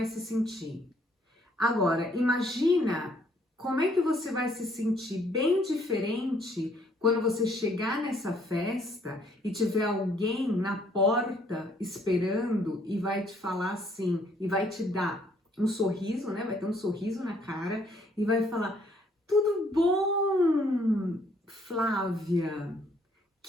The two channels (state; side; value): normal; both; correlation 0.65